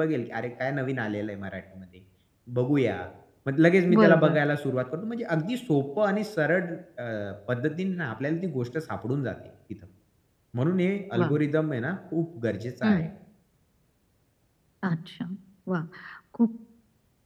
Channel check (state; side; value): identical; both; correlation 1.00